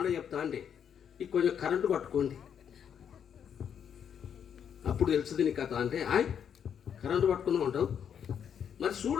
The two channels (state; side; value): quieter; right; 8.2 dB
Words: చెప్తా అంటే, ఈ కొంచెం కరెంటు పట్టుకోండి అప్పుడు తెలుస్తుంది నీ కథ అంటే, కరెంటు పట్టుకున్నావు అంటావు. మరి